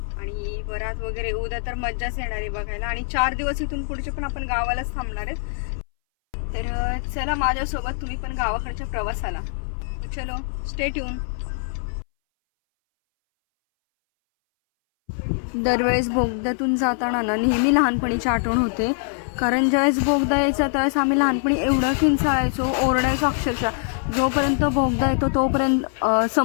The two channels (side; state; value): right; silent; 61 dB below the other